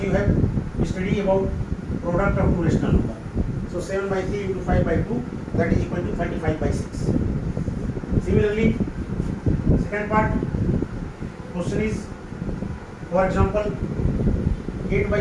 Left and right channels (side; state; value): both; identical; correlation 1.00